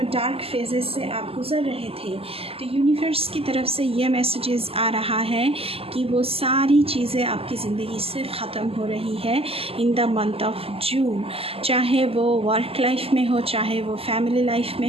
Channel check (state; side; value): late; left; 0.28 ms